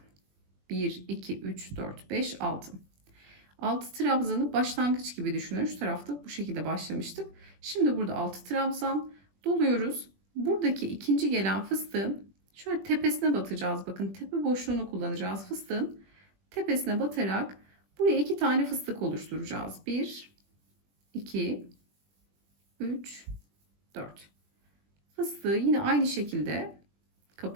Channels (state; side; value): late; left; 21 ms